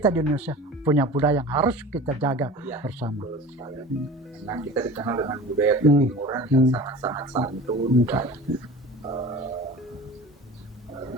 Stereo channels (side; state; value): both; normal; correlation 0.37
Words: di Indonesia punya budaya yang harus kita jaga bersama. Nah, kita dikenal dengan budaya ketimuran yang sangat-sangat santun dan